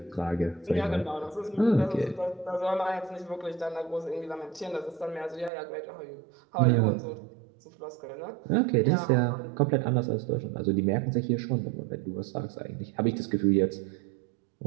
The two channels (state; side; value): drops out; left; at 5.5 s